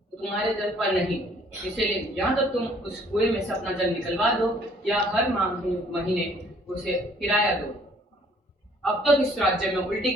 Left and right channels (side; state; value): both; normal; correlation 0.60